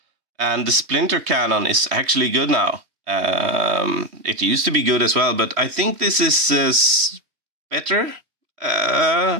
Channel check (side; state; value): left; late; 3.1 ms